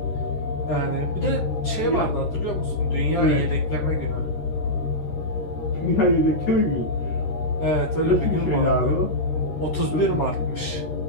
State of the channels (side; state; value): right; late; 13 ms